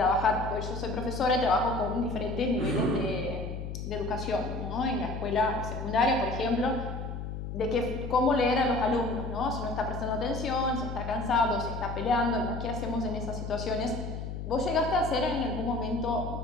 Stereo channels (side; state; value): left; noise; hum, 6 dB below the sound